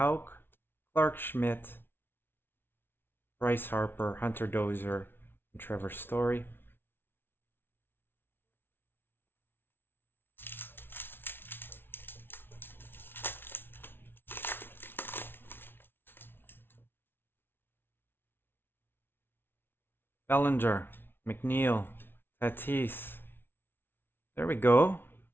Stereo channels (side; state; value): right; late; 0.11 ms